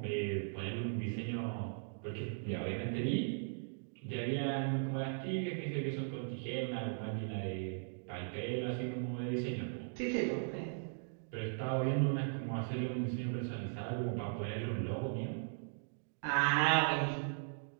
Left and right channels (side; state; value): left; silent; digital silence